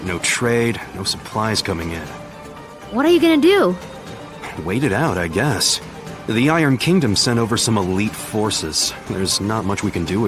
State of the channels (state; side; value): identical; both; correlation 1.00